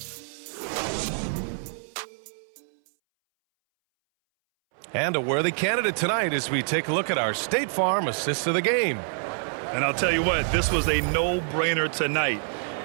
And a worthy candidate tonight as we take a look at our State Farm assist of the game. And I'll tell you what, this was a no-brainer tonight.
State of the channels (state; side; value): silent; left; 61 dB below the other